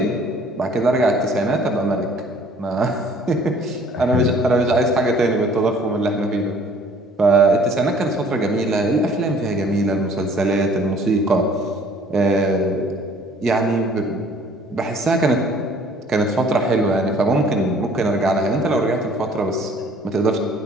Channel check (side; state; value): both; normal; correlation 0.55